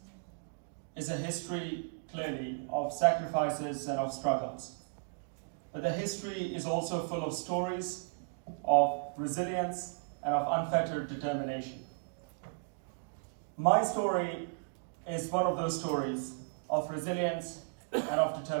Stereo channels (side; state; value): left; silent; digital silence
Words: is a history clearly of sacrifices and of struggles. But the history is also full of stories of resilience and of unfettered determination. My story is one of those stories of resilience and of